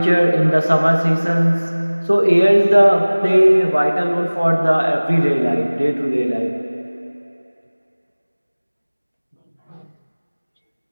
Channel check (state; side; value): inverted; both; correlation -1.00